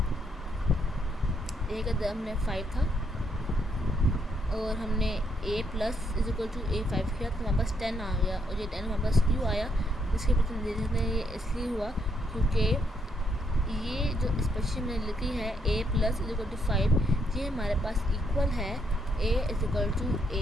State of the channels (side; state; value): both; normal; correlation 0.74